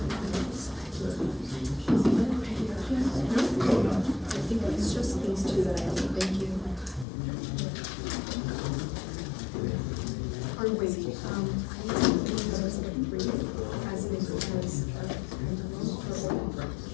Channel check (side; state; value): right; drops out; at 7.1 s